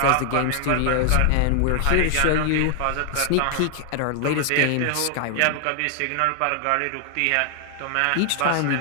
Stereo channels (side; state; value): both; different; correlation 0.00